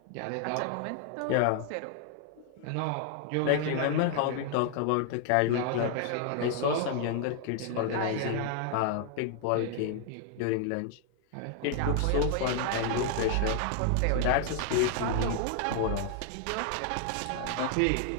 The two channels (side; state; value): both; different; correlation 0.00